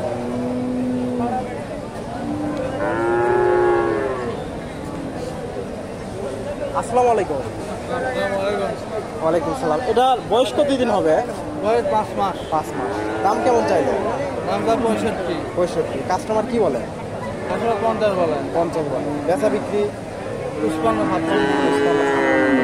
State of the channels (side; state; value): both; identical; correlation 1.00